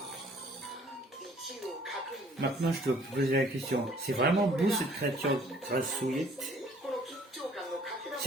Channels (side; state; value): both; normal; correlation 0.58